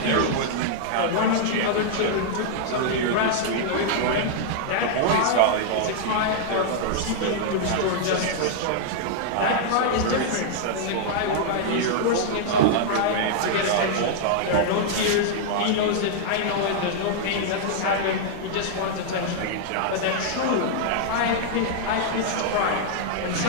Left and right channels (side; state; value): both; different; correlation -0.01